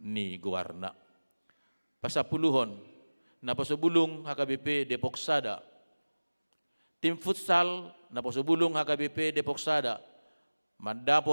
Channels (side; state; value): both; inverted; correlation -1.00